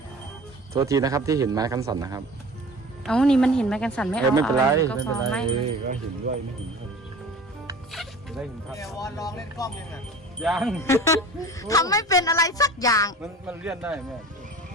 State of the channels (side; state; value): both; normal; correlation 0.40